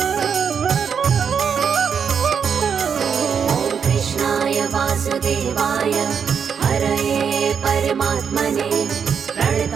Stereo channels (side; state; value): left; quieter; 6.9 dB